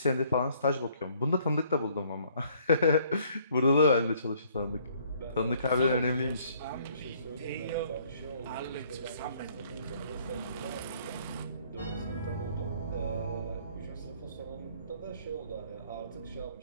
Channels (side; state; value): both; inverted; correlation -0.62